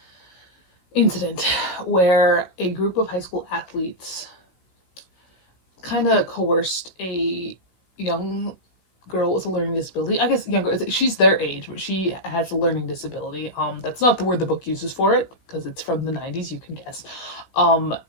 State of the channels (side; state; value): right; late; 16 ms